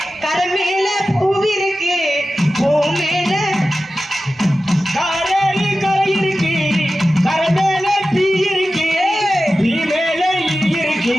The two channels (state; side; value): normal; both; correlation 0.94